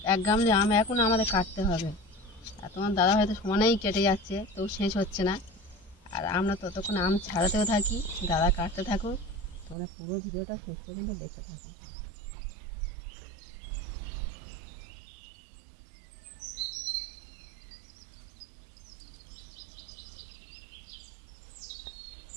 এক গামলি আম এখন আমাদের কাটতে হবে। আর তোমার দাদা হয়তো সমানেই কেটে যাচ্ছে, তো শেষ হচ্ছে না। আর আমরা ততক্ষণ আম ছাড়াতেও থাকি, দাদা কাটতে থাকুক। তোমরা পুরো ভিডিওটা শেষ পর্যন্ত দেখতে থাকো।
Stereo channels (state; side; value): drops out; left; at 9.8 s